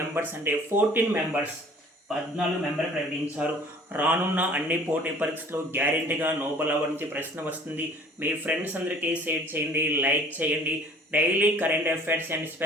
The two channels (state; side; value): normal; both; correlation 0.51